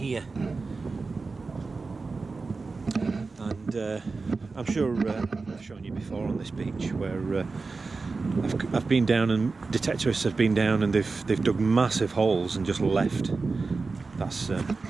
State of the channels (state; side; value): quieter; left; 4.1 dB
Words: And I'm sure I've shown you before on this beach where I've been down, and detectorists have been down, and they've dug massive holes and just left. That's in